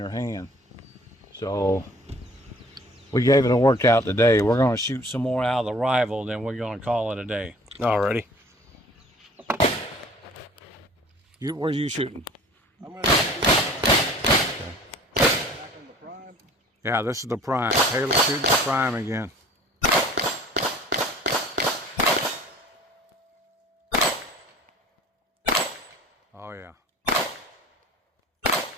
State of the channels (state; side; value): normal; both; correlation 0.49